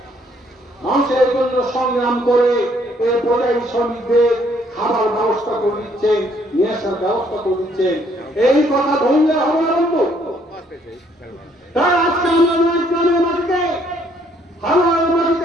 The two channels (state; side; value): normal; both; correlation 0.66